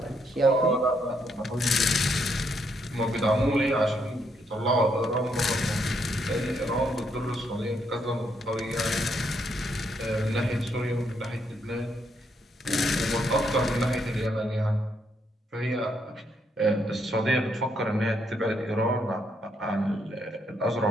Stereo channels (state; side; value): normal; both; correlation 0.75